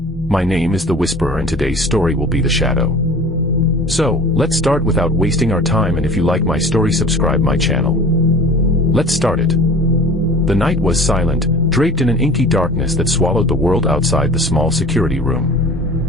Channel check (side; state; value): both; normal; correlation 0.42